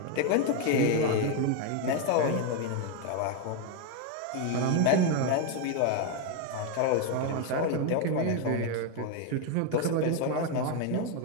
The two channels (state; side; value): different; both; correlation 0.01